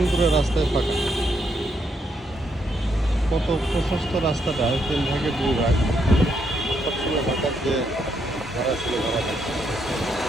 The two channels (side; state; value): both; normal; correlation 0.77